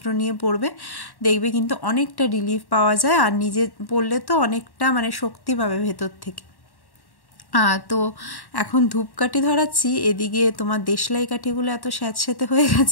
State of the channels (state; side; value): late; right; 1.1 ms